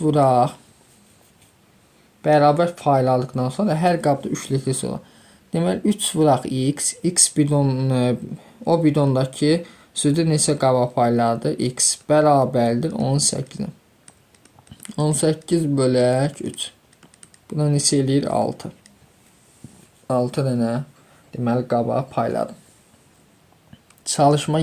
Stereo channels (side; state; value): both; identical; correlation 1.00